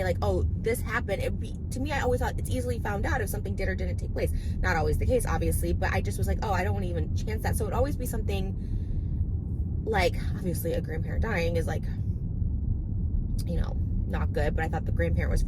like, oh, this happened, it would be, to me, I always thought it's easily found out if something did or didn't take place. Not always the case, obviously, but I just was like, oh, I don't want to even chance that. So it would always be something like, obviously a grandparent dying is like, you know, not good, but I thought the grandparent was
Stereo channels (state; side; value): identical; both; correlation 1.00